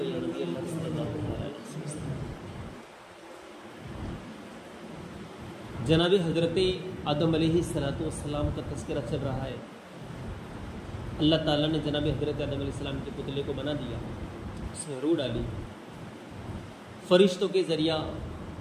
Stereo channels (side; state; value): both; identical; correlation 1.00